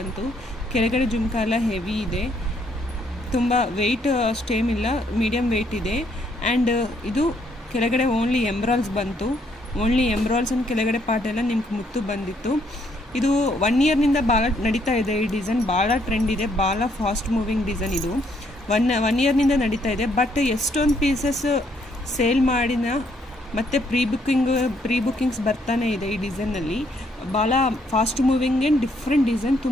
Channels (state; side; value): normal; both; correlation 0.70